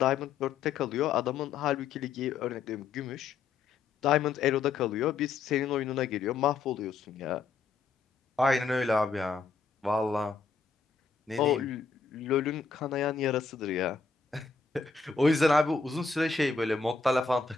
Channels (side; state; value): right; quieter; 4.9 dB